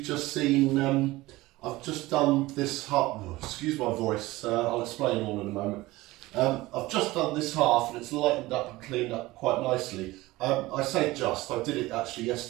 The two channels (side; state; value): left; quieter; 19.3 dB